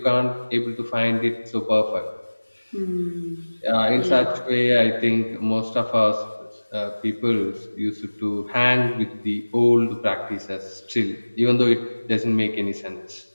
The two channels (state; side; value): inverted; both; correlation -1.00